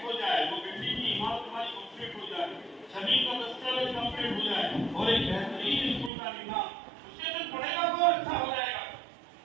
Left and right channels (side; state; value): left; drops out; at 6.1 s